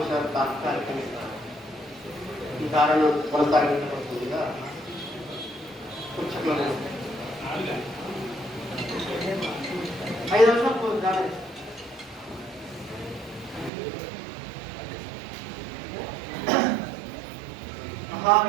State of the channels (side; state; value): left; drops out; at 13.7 s